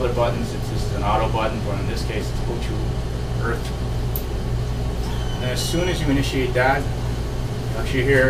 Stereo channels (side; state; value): both; identical; correlation 1.00